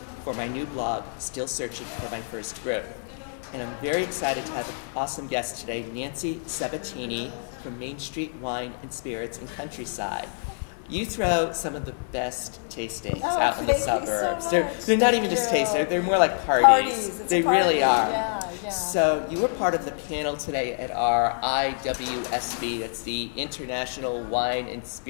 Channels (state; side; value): silent; right; digital silence